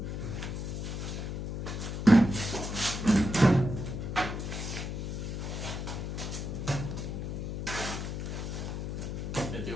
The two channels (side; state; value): left; noise; hum, 4 dB below the sound